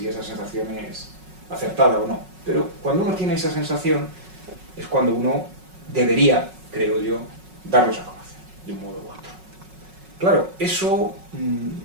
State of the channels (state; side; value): late; left; 5.4 ms